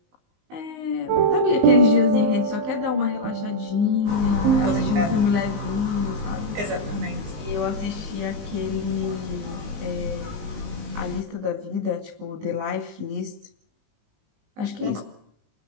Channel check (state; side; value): late; left; 19 ms